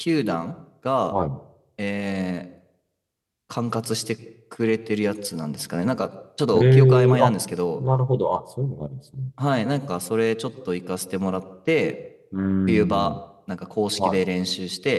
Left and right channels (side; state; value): both; identical; correlation 1.00